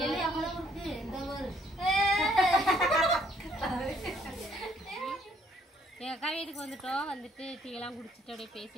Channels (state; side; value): normal; both; correlation 0.66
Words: எங்கள் அக்கா வீட்டுக்கு வந்துட்டோம். வந்துட்டு டீயெல்லாம் குடிச்சிட்டு அப்படியே